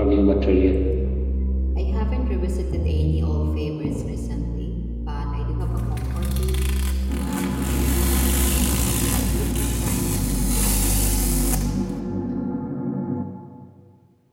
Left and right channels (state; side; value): identical; both; correlation 1.00